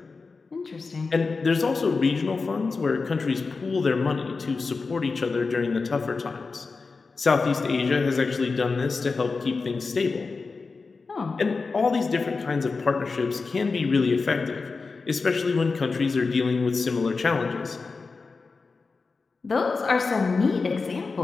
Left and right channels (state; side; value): quieter; right; 4.3 dB